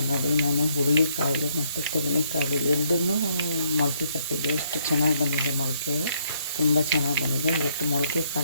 ನೋಡಿ, ನಾನು ಹುರುಳಿಕಾಳು ಮತ್ತು ತೆಂಗಿನಕಾಳು ಎರಡನ್ನೂ ಮೊಳಕೆ ಕಟ್ಟಿದ್ದೆ. ಎಷ್ಟು ಚೆನ್ನಾಗಿ ಬಂದಿದೆ ಮೊಳಕೆ, ತುಂಬ ಚೆನ್ನಾಗಿ ಬಂದಿದೆ. ಇವತ್ತು ಮೊಳಕೆ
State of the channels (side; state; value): both; inverted; correlation -0.71